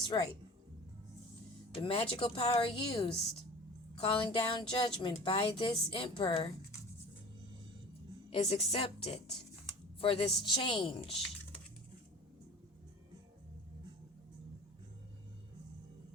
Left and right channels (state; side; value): normal; both; correlation 0.40